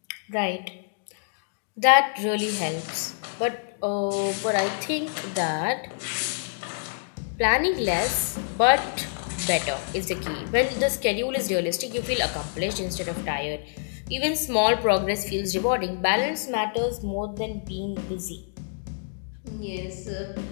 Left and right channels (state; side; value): silent; right; digital silence